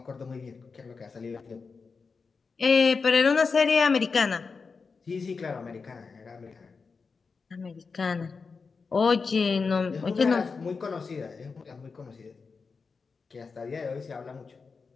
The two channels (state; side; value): quieter; right; 4.8 dB